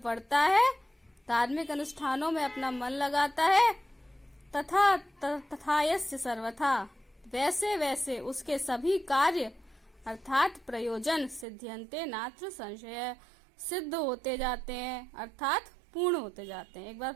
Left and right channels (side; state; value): left; drops out; at 11.5 s